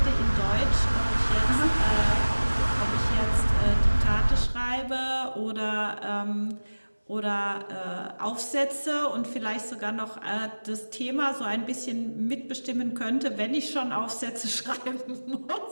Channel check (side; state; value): both; inverted; correlation -1.00